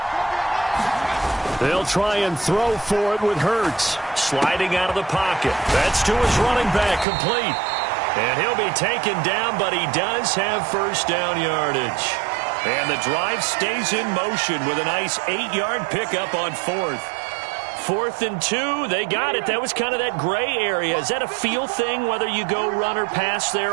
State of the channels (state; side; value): drops out; left; at 7.1 s